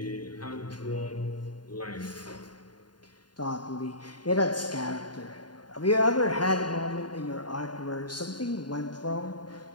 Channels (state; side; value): late; right; 0.70 ms